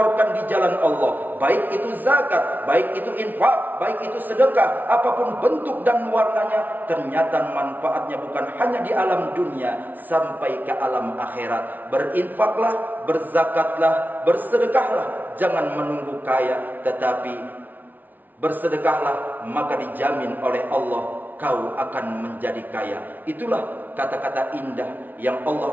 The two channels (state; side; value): late; left; 0.083 ms